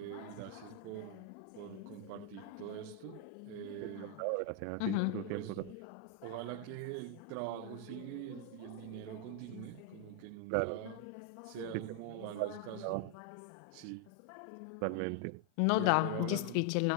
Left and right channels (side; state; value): both; different; correlation 0.00